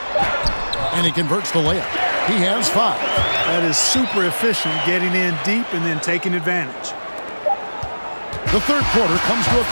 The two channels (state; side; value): inverted; both; correlation -1.00